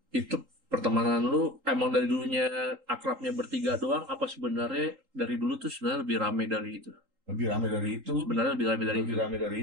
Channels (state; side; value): late; left; 3.8 ms